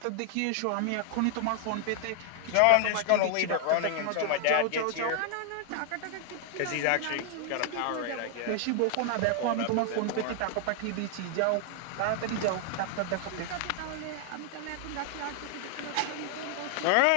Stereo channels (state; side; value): different; both; correlation 0.00